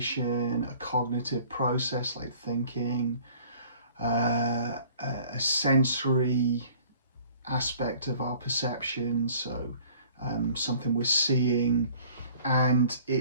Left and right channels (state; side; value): inverted; both; correlation -0.52